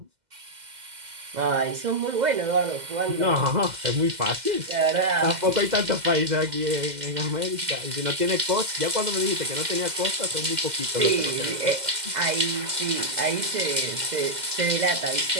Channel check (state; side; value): late; left; 2.0 ms